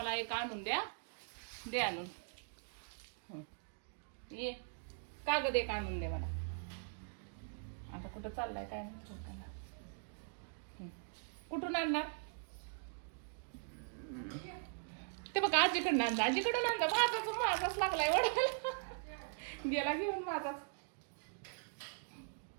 एक आणून द्या. दे आणून. ये कागद एक आणून दे मला. आता कुठं चाललाय काय म्हणतो त्याला. कुठून आणणार? ते बघा आजीकडनं आणता. आजीकडून आणता. माझाच लागलाय वडायला. गेला घेऊन माझाच.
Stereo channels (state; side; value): silent; left; digital silence